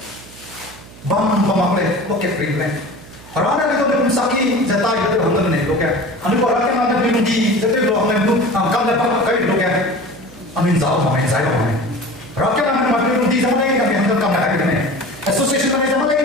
bam bam le ko ke kring le Rana itu belum sakit, jatah itu hangat nih, loh ya. Anu orang yang ada belum di, jatah itu hangat belum, kam dapat kau loh ya. Anu jauh mana, jauh mana. Rakyat yang ada belum di sama lagi kami hangat kam dapat gitu nih. Association kami sama lagi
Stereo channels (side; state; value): right; noise; hum, 20 dB below the sound